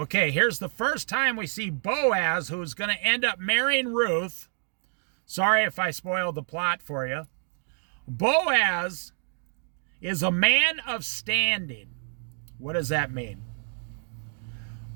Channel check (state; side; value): silent; left; 59 dB below the other